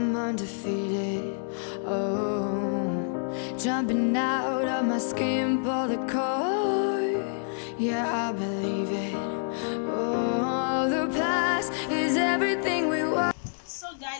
undefeated, oh. Jumping out of my skin, pull the cord. Yeah, I believe it. Oh, the past is everything we want. So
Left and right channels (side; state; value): right; silent; 60 dB below the other